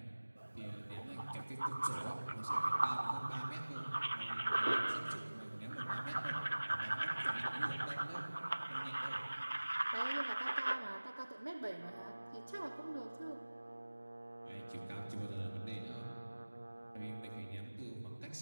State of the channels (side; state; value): both; inverted; correlation -1.00